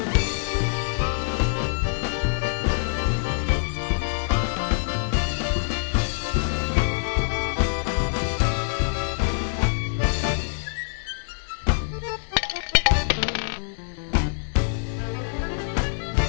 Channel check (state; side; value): silent; right; digital silence